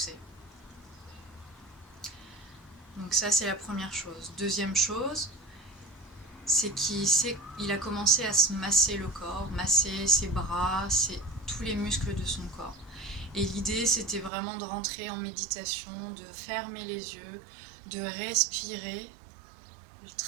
Donc ça, c'est la première chose. Deuxième chose, c'est qu'il a commencé à se masser le corps, masser ses bras, tous les muscles de son corps. Et l'idée, c'était vraiment de rentrer en méditation, de fermer les yeux, de respirer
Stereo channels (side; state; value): left; drops out; at 14.3 s